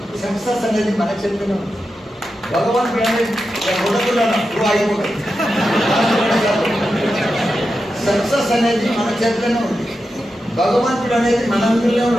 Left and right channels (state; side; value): normal; both; correlation 0.90